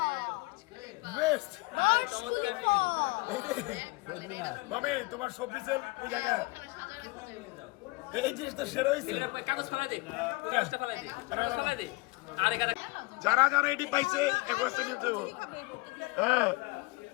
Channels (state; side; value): quieter; right; 24.8 dB